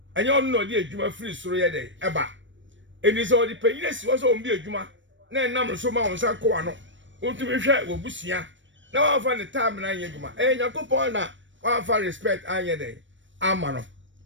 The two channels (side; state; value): left; late; 0.55 ms